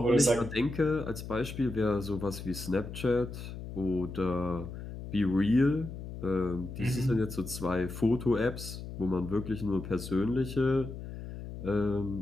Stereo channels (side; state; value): left; noise; hum, 10 dB below the sound